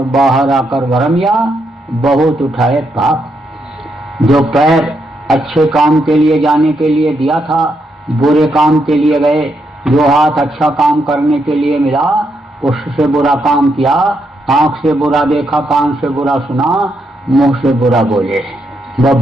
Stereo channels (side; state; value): both; normal; correlation 0.79